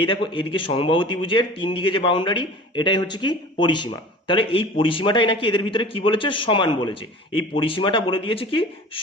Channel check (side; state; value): both; normal; correlation 0.41